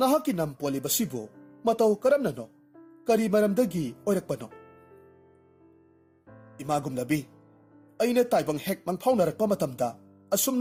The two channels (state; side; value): identical; both; correlation 1.00